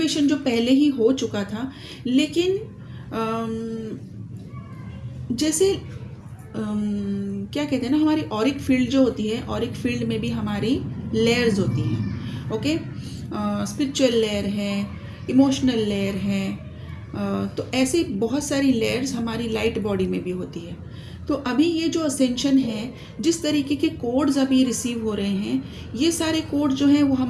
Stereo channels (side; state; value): both; identical; correlation 1.00